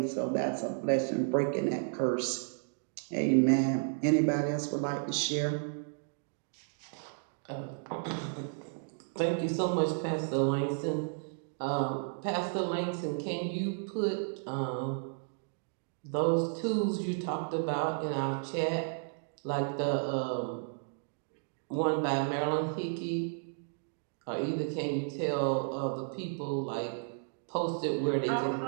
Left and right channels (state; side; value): silent; left; digital silence